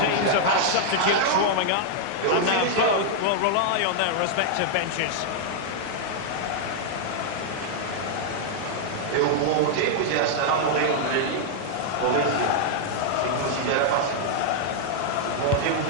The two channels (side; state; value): both; different; correlation -0.01